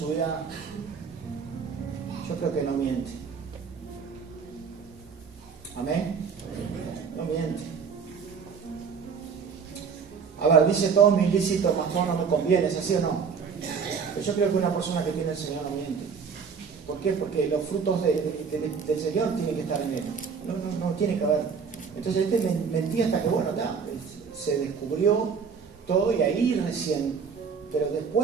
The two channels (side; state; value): left; quieter; 6.0 dB